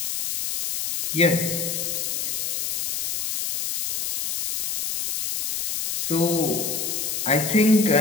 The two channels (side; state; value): left; noise; hiss, 3 dB below the sound